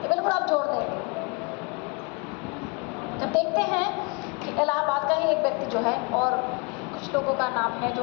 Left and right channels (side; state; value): right; quieter; 32.0 dB